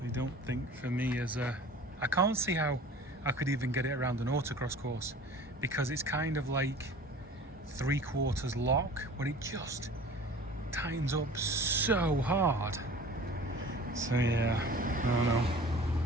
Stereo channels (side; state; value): both; normal; correlation 0.43